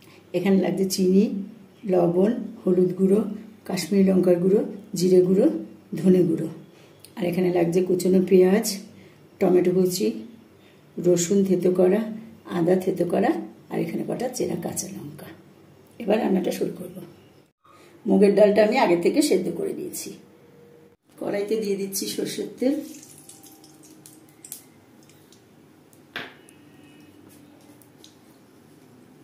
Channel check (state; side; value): identical; both; correlation 1.00